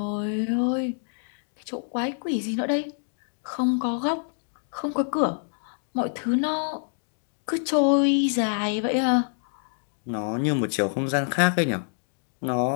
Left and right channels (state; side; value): silent; right; digital silence